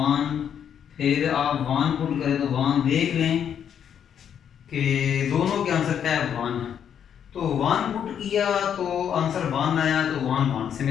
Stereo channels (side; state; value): right; quieter; 8.6 dB